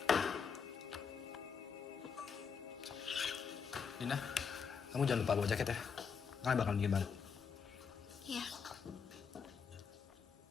Dina, kamu jangan lupa bawa jaket ya. Kalian bakal bikin baru. Iya.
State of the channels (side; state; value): right; quieter; 6.2 dB